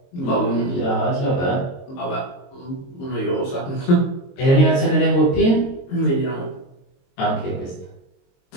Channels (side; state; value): right; late; 22 ms